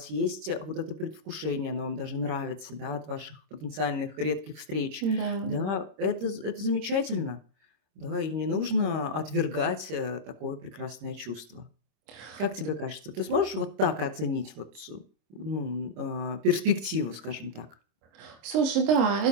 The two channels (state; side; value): late; left; 25 ms